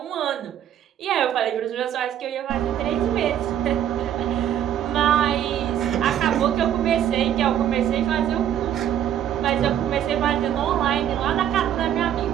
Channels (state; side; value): quieter; left; 10.4 dB